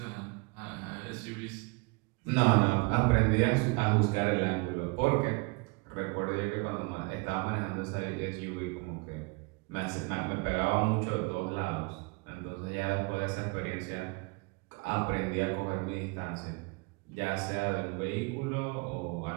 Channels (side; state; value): left; quieter; 28.7 dB